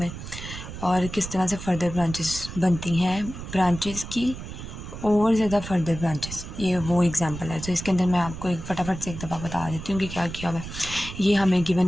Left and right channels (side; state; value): right; noise; rumble, 10 dB below the sound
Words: और किस तरह से फ़र्दर ब्रांचेस बनती हैं ब्रांचेस की और ज़्यादा फर्दर ब्रांचेस। ये वो एग्जांपल है। तो इसके अंदर मैं आपको एक फटाफट से एक दफ़ा बता देती हूँ कि क्या किया हुआ है। ये हमें